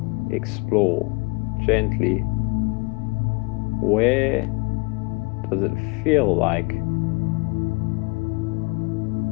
explore gently. Where does it feel like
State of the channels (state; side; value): quieter; right; 29.3 dB